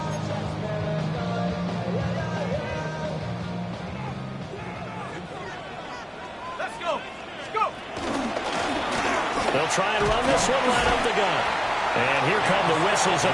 They'll try and run this one right up the gut. And here come the whistles of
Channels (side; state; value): both; identical; correlation 1.00